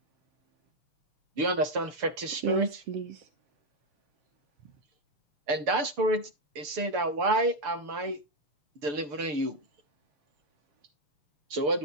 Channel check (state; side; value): late; left; 6.8 ms